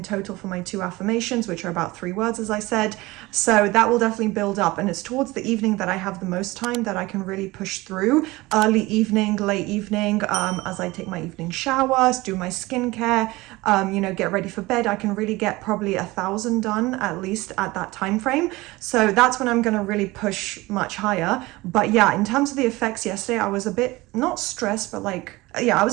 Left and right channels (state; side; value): quieter; left; 20.8 dB